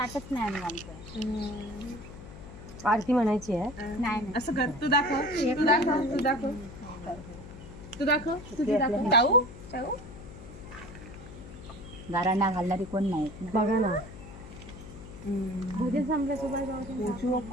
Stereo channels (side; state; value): left; noise; hum, 15 dB below the sound